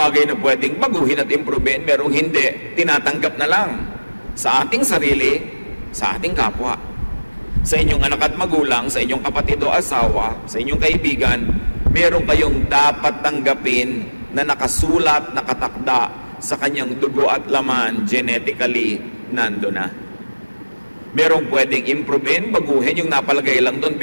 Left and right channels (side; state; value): both; inverted; correlation -1.00